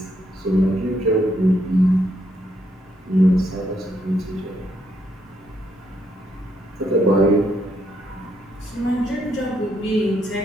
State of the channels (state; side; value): normal; both; correlation 0.74